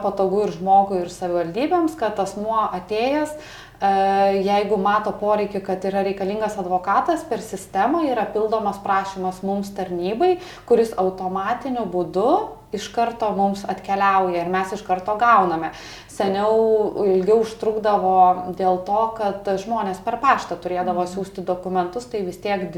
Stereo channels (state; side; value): identical; both; correlation 1.00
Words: ir žmogui, ir savivaldybėms, kad asmuo atėjęs, jeigu mato poreikį, kad yra reikalingas advokatas, per sistemą yra pildomas prašymas mums tarnybai, kuris automatiniu būdu iš karto mums atkeliauja ir mes iš karto gauname. Seniau ilgiau užtrukdavo dėl to, kad žmonės per paštą turėdavo siųsti dokumentus, tai vis tiek